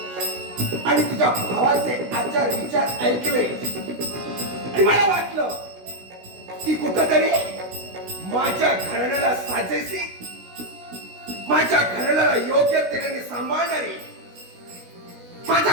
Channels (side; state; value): left; late; 16 ms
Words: आणि तुझ्या भावाचे आचार विचार ऐकले आणि मला वाटलं की कुठंतरी माझ्या घराण्याला साजेसी माझ्या घराण्याला योग्य तेने सांभाळणारी माझ्या